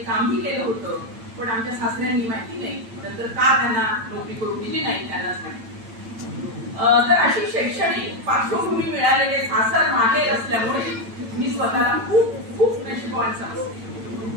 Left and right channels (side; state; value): left; late; 8.9 ms